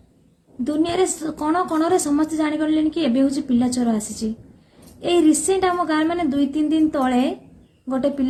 दुनिया रे कोण कोण समस्त जानी गले कि एबे हूँ पिला चोर आसी ए रिसेंट आम गाँव मैंने 2-3 दिन तले गोटे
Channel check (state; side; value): identical; both; correlation 1.00